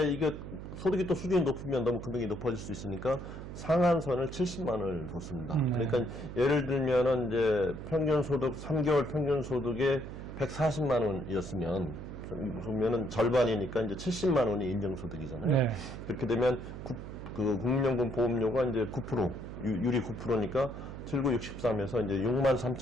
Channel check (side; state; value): right; noise; hum, 10 dB below the sound